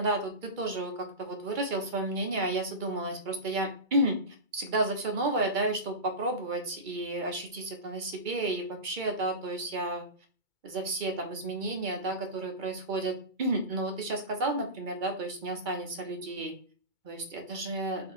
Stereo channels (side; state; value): left; late; 2.2 ms